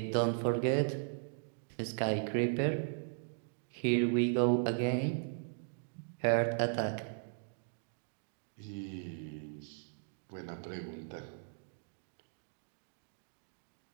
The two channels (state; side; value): silent; left; digital silence